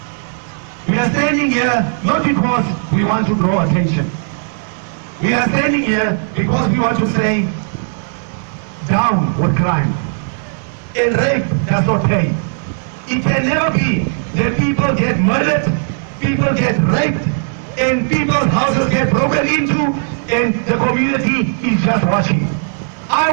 we are standing here not because we want to draw attention. We are standing here because we want to say, down with crime. And rape does not pay. It can never be that people get murdered, people get raped, and people's houses get broken into, and the community is just watching. I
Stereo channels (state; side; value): silent; left; digital silence